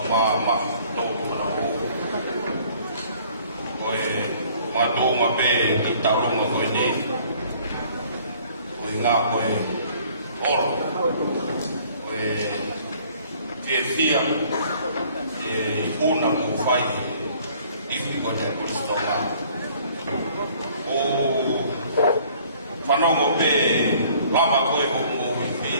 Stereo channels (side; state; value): both; inverted; correlation -0.57